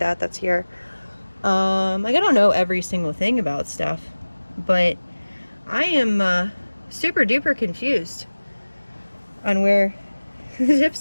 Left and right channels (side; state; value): both; inverted; correlation -1.00